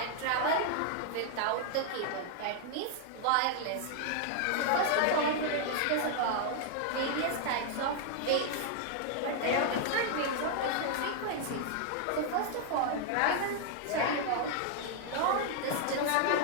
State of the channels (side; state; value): both; different; correlation 0.00